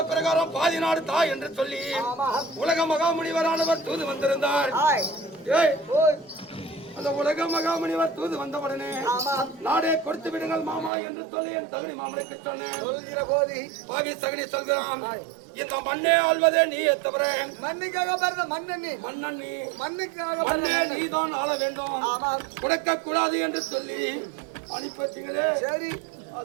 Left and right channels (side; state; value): left; drops out; at 10.9 s